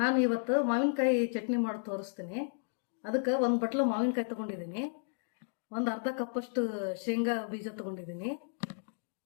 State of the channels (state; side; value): silent; right; digital silence